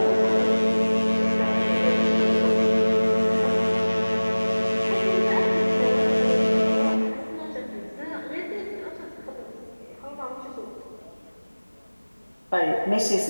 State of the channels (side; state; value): both; inverted; correlation -1.00